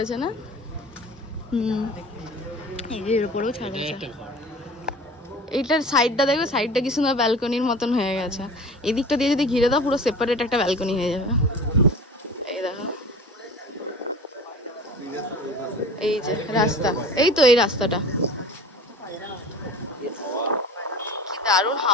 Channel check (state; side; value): normal; both; correlation 0.40